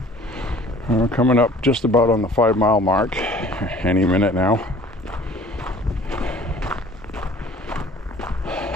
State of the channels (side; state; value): both; normal; correlation 0.50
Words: We're coming up just about on the 5-mile mark any minute now.